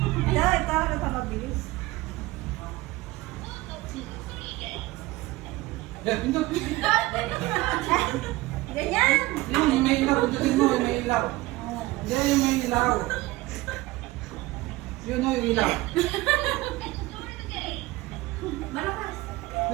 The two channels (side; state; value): left; quieter; 19.5 dB